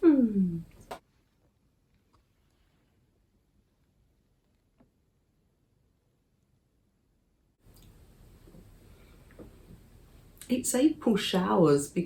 It's April showers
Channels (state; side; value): identical; both; correlation 1.00